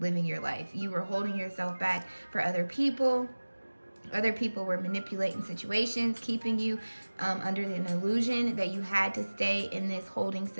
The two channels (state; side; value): inverted; both; correlation -1.00